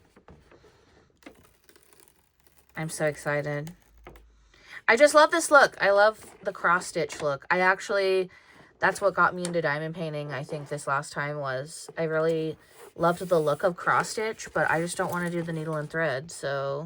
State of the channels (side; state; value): both; identical; correlation 1.00